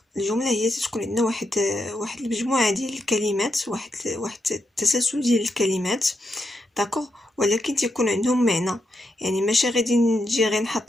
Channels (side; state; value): both; normal; correlation 0.83